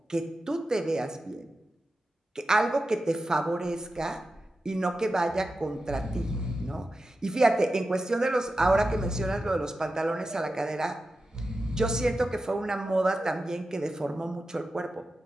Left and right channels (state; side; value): normal; both; correlation 0.92